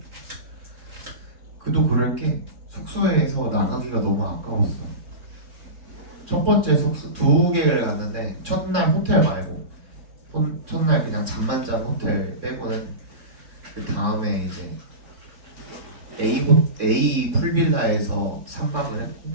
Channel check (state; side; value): late; left; 3.6 ms